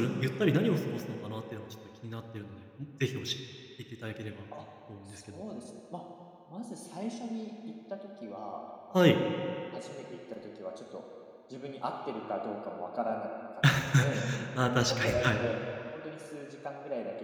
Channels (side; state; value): both; identical; correlation 1.00